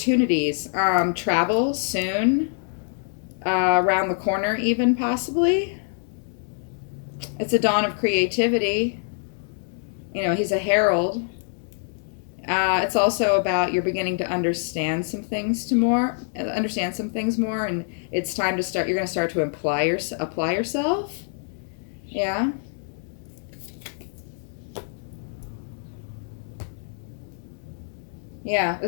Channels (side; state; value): right; silent; digital silence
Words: Travel soon, around the corner even possibly. It's a dawn of creativity. He's a herald. It's also about you're beginning to understand some things more, and it's time to start. You're going to start to apply yourself. Yeah. Yeah,